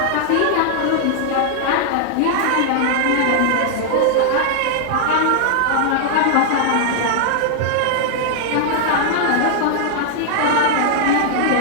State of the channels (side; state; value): both; different; correlation -0.01